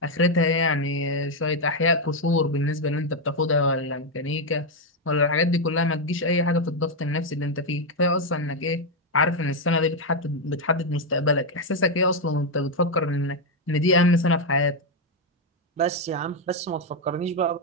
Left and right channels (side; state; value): both; normal; correlation 0.03